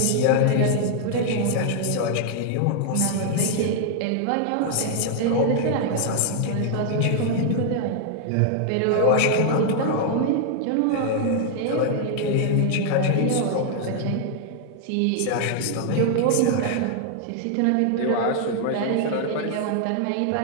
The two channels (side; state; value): both; different; correlation 0.00